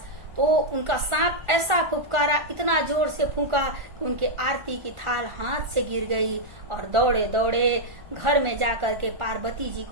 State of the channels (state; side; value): late; left; 1.4 ms